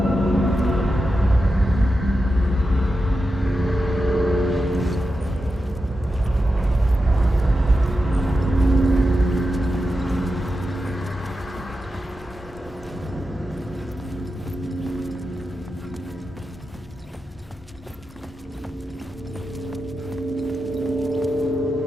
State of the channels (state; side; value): normal; both; correlation 0.90